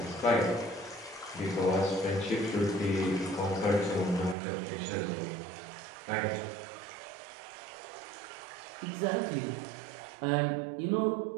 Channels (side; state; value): left; drops out; at 4.4 s